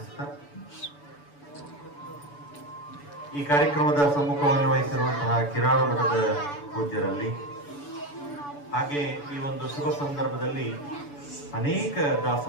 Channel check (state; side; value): late; right; 6.9 ms